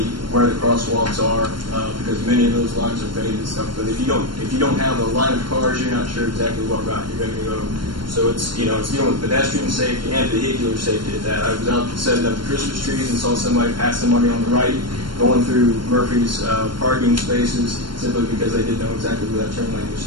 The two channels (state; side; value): late; left; 0.72 ms